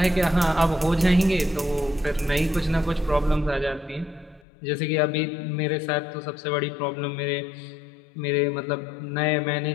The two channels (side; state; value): right; drops out; at 4.4 s